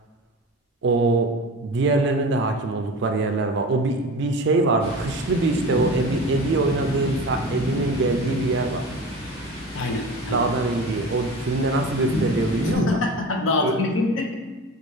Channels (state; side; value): normal; both; correlation 0.34